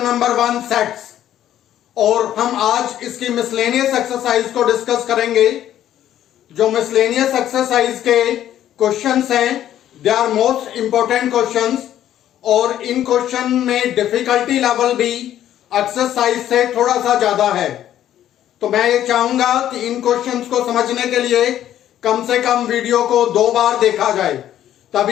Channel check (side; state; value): right; quieter; 11.6 dB